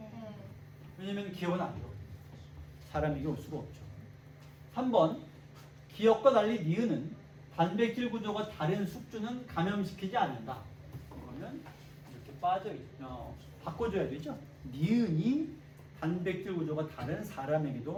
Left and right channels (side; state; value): both; identical; correlation 1.00